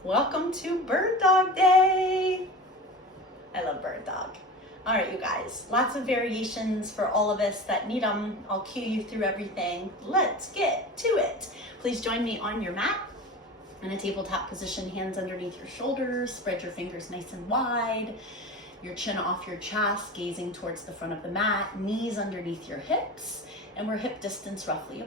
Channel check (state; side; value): normal; both; correlation 0.32